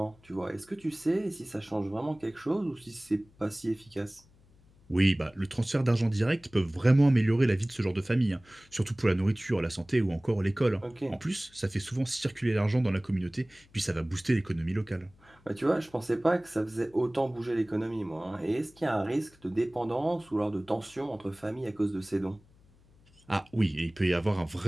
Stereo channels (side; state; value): left; noise; hum, 29 dB below the sound